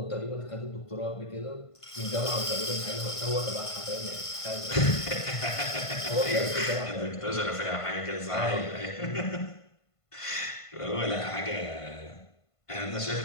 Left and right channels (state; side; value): late; right; 1.5 ms